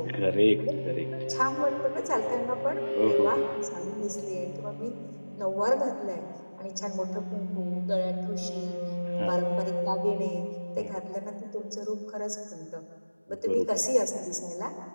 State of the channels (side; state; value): both; inverted; correlation -1.00